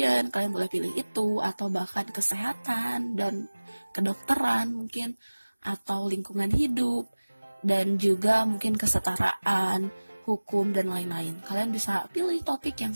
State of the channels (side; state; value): both; inverted; correlation -1.00